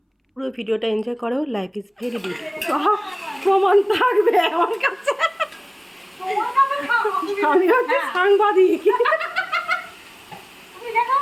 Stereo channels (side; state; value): both; identical; correlation 1.00